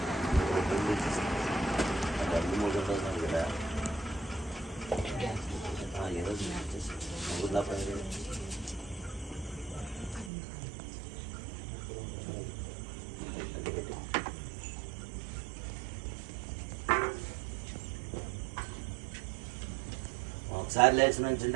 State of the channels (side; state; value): left; drops out; at 10.3 s